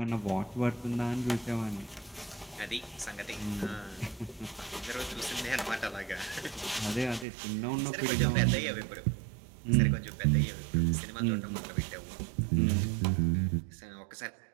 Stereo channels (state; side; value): drops out; left; at 7.2 s